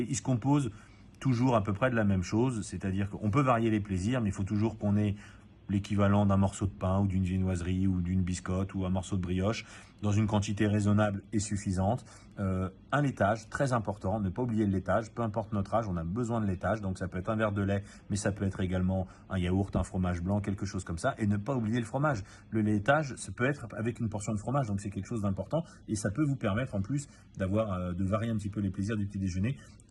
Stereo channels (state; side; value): identical; both; correlation 1.00